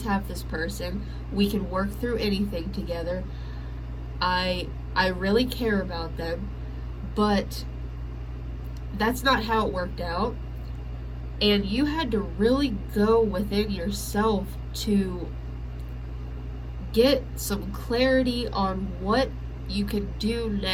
have this person. We can work through anything together. I really care about them, but that's not how it worked out. And you had to really go within yourself to get some clarity on what you can do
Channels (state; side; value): identical; both; correlation 1.00